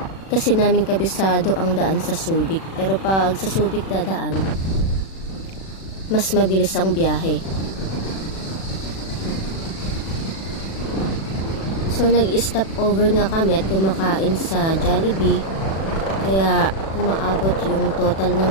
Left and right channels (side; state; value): right; late; 36 ms